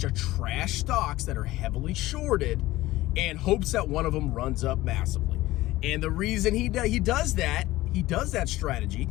of trash stocks that are heavily shorted and hopes that one of them runs up massively. And the reason he does that strategy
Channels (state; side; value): quieter; right; 17.3 dB